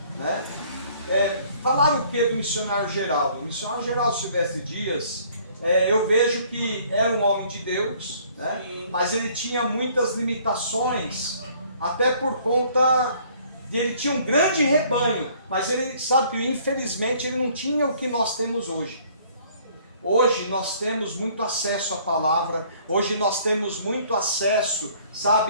né? Falaram o que do missionário Geraldo? O missionário Geraldo Silvestre Dias, eu vejo que era um homem de Deus, né? Mas ele tinha muitas limitações, até por conta de ele tinha um grande rebanho, mas ele sabe que infelizmente ele não tinha o que nós temos hoje. Hoje nós temos muito acesso à palavra, hoje nós temos muito acesso,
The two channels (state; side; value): inverted; both; correlation -0.58